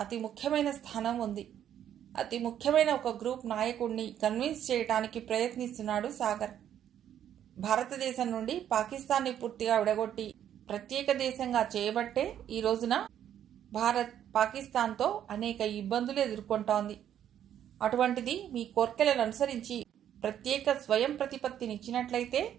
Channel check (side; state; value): left; quieter; 10.3 dB